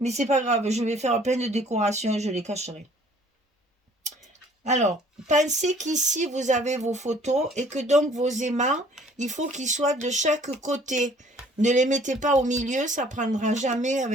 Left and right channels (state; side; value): normal; both; correlation 0.56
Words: c'est pas grave, je vais faire plein de décorations et je les cacherai. Alors, pensez qu'ici, vous avez vos photos et que donc vos aimants, il faut qu'ils soient de chaque côté. Ne les mettez pas au milieu, ça prendra jamais